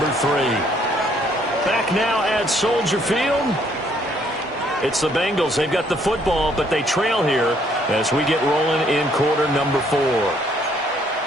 3. Back now at Soldier Field. It's the Bengals. They've got the football, but they trail here as we get rolling in quarter number 4.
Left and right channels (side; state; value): both; normal; correlation 0.66